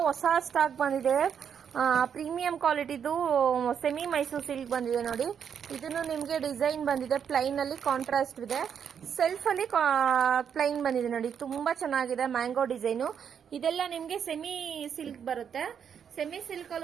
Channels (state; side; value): quieter; left; 7.8 dB